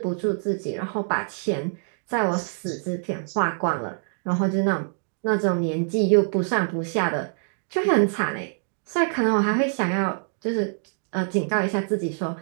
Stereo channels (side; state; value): left; silent; digital silence